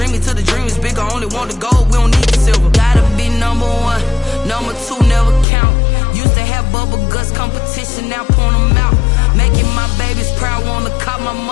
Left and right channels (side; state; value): right; drops out; at 5.5 s